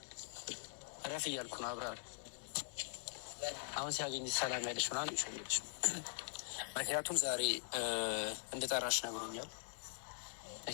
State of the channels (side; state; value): right; silent; digital silence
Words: እረፍ እያልኩ ነው። አብርሃም አሁን ሲያገኝሽ ሰላም ያለሽ ምናምን እየሸወደሽ፣ ምክንያቱም ዛሬ እንደጠራሽ ነግሮኛል።